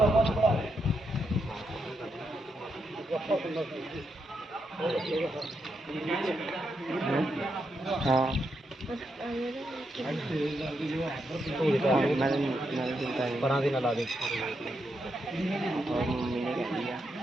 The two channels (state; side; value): normal; both; correlation 0.82